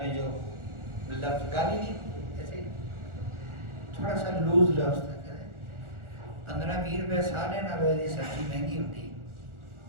جو لفظ گالی نہیں، ایسے تھوڑا سا لوز لفظ تھا. 15-20 روپے سالے نہ روزی سبزی مہنگی ہوتی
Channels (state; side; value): late; left; 1.4 ms